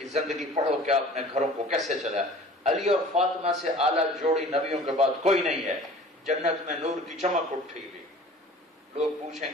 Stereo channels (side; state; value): both; normal; correlation 0.46